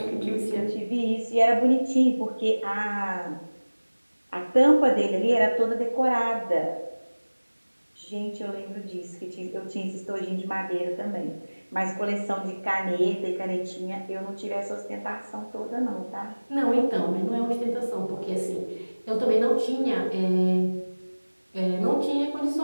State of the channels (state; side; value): inverted; both; correlation -1.00